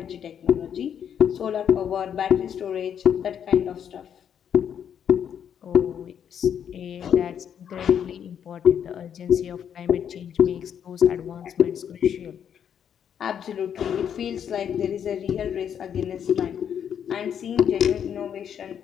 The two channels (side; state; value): right; quieter; 8.6 dB